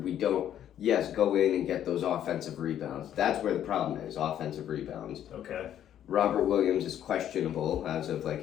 go in and get those offensive rebounds. That's where the problem is, offensive rebounds. Okay. Robert Williams is questionable as of like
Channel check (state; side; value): quieter; right; 10.6 dB